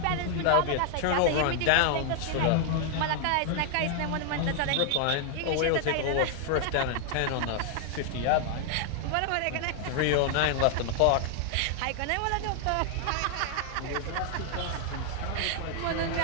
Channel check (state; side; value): different; both; correlation 0.00